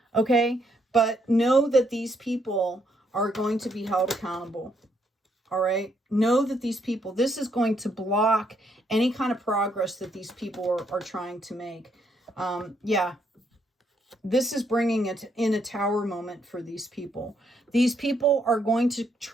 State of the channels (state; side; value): normal; both; correlation 0.74